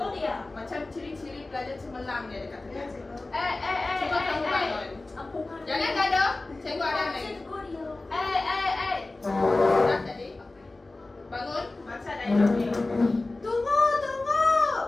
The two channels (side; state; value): right; quieter; 3.1 dB